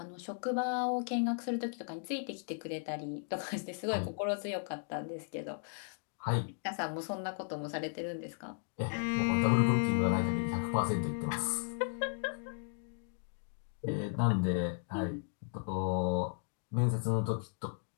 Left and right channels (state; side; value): silent; right; digital silence